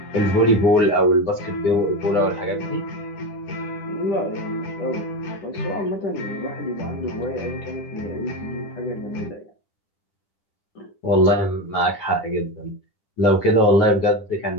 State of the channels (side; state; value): right; late; 10 ms